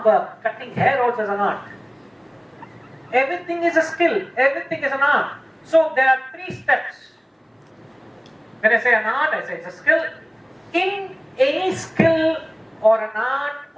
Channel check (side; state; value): both; identical; correlation 1.00